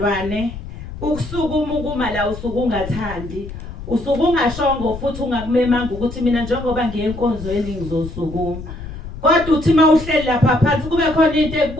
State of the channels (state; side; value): noise; left; rumble, 11 dB below the sound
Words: ukusukuma ukuma la usuku ungathandi, usuku ungashongo futhi ungakumemanga ukuthi mina njengoba ngiyenkonzweni ngizosukuma. Kodwa uthi mawuhleli lapha phansi kube khona into